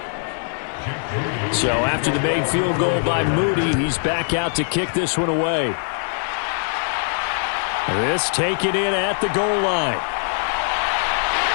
So after the made field goal by Moody, he's back out to kick this one away. This taken in at the goal line.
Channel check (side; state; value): right; silent; 65 dB below the other